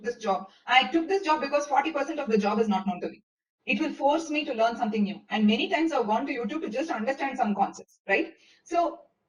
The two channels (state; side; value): identical; both; correlation 1.00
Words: this job. I took this job because 40% of the job is not known to me. It will force me to learn something new. And many times I've gone to YouTube to just understand some concepts, right? So